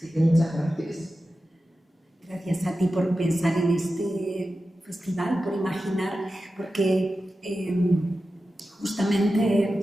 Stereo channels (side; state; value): both; normal; correlation 0.93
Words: que muchas gracias. Gracias a ti por pensar en este festival, por imaginar, porque